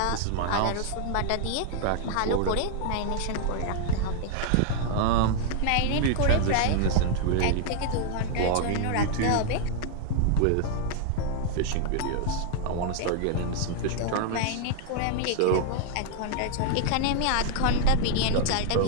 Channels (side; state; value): both; different; correlation 0.00